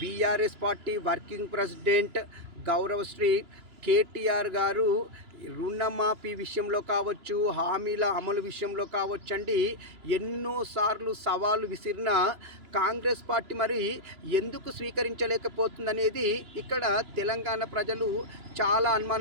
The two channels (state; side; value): late; left; 2.9 ms